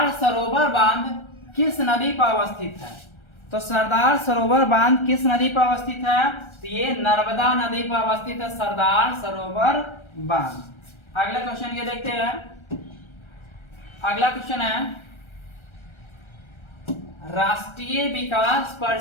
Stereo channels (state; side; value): late; right; 1.3 ms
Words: सरोवर बांध किस नदी पर अवस्थित है? तो सरदार सरोवर बांध किस नदी पर अवस्थित है? तो ये नर्मदा नदी पर अवस्थित है सरदार सरोवर बांध। अगला क्वेश्चन ये देखते हैं। अगला क्वेश्चन है, राष्ट्रीय विकास